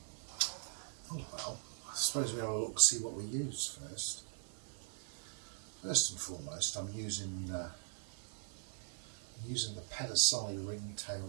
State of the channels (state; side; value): silent; left; digital silence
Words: Oh well, I suppose we'll have a look, see what we use first. First and foremost, I'm using the percussion ringtail